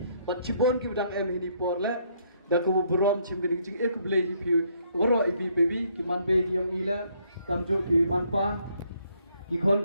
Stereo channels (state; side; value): inverted; both; correlation -0.69